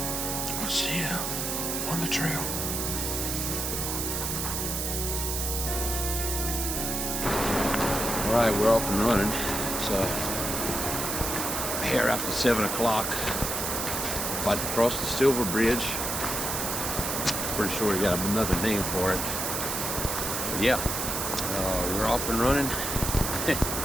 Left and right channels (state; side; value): noise; right; hiss, 2 dB below the sound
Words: we'll see you on the trail. All right, we're off and running. So here after 7 o'clock, about to cross the Silver Bridge. Pretty sure we got another name for it. But yeah, we're off and running.